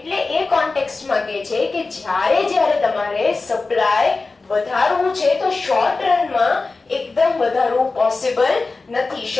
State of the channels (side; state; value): right; quieter; 3.8 dB